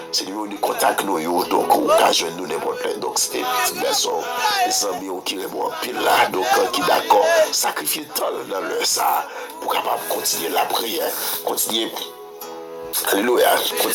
C'est le numéro de contact nous, donc on peut joindre nous n'importe quoi. Donc c'était petit garçon, les amis qui répondent en pile là, donc qui d'accord, sacrifier tant dans le ça, pour capable continuer la prière, continuer Alléluia.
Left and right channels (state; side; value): identical; both; correlation 1.00